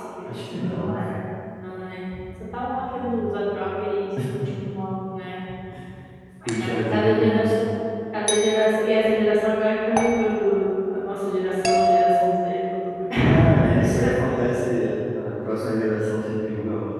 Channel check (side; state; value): both; identical; correlation 1.00